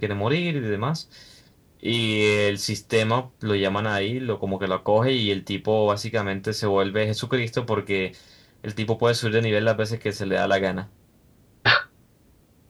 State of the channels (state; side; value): identical; both; correlation 1.00